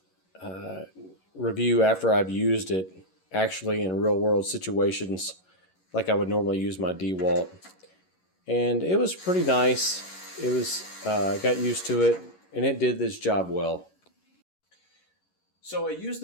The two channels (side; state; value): right; late; 11 ms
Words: review after I've used it actually in real world situations like I would normally use my DeWalt. And it was pretty nice. It was, I got used to it and it did this job well. So I used